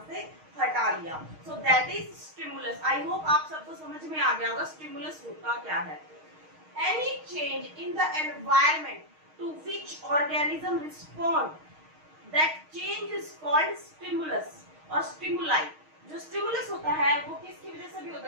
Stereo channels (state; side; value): late; left; 6.4 ms